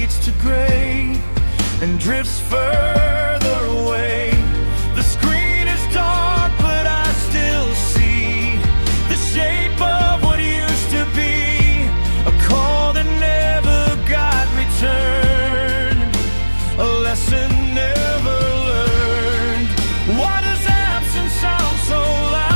to gray and drifts further away. The screen is dark, but I still see the shape of what used to be, a call that never got returned, a lesson never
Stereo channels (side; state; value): both; inverted; correlation -1.00